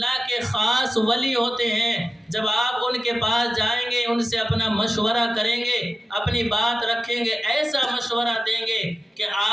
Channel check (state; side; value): normal; both; correlation 0.94